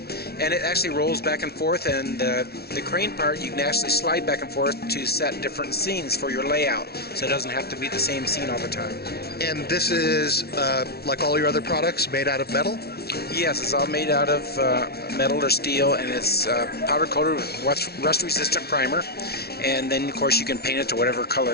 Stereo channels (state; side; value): late; right; 0.45 ms